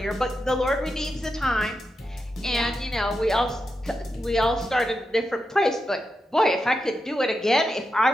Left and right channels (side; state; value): both; normal; correlation 0.87